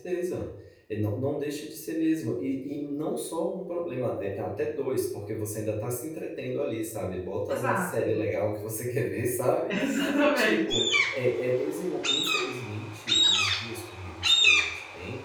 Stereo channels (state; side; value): identical; both; correlation 1.00